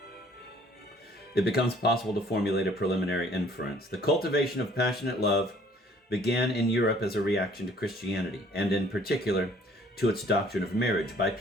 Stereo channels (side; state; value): both; normal; correlation 0.57